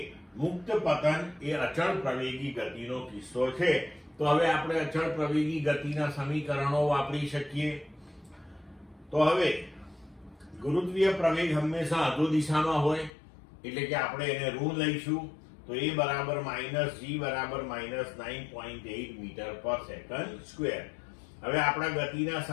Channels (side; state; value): right; drops out; at 13.1 s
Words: મુક્ત પતન એ અચળ પ્રવેગી ગતિનો કિસ્સો છે. તો હવે આપણે અચળ પ્રવેગી ગતિના સમીકરણો વાપરી શકીએ. તો હવે ગુરુત્વીય પ્રવેગ હંમેશા અધો દિશામાં હોય, એટલે કે આપણે એને ઋણ લઈશું. તો એ બરાબર -g બરાબર -9.8 મીટર પર સેકન્ડ સ્ક્વેર. હવે આપણા ગતિના